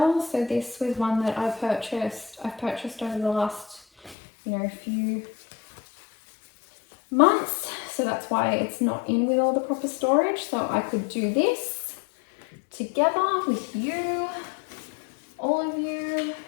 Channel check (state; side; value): drops out; right; at 4.2 s